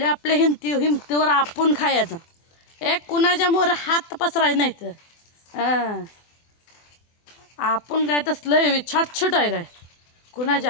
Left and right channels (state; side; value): late; right; 24 ms